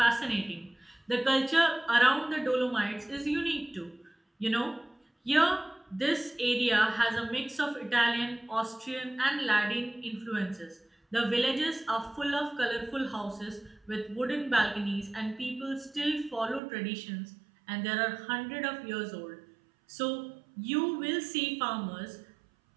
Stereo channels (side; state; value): left; drops out; at 16.6 s